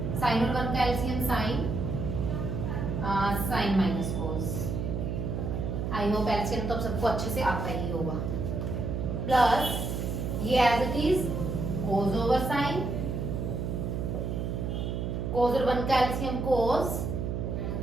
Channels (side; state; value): right; noise; hum, 2 dB below the sound